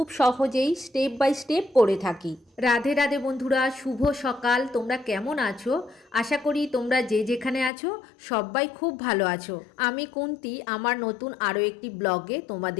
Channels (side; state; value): right; drops out; at 7.7 s